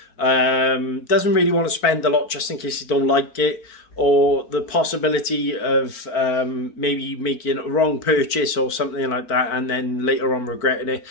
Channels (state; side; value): late; right; 4.5 ms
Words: doesn't really want to spend a lot just in case you don't like it, or the possibility of maybe making a wrong purchase or something like that and then later on regretting it.